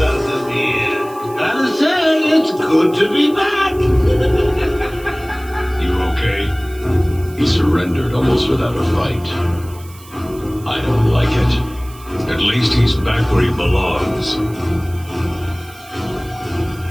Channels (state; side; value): noise; right; hiss, 22 dB below the sound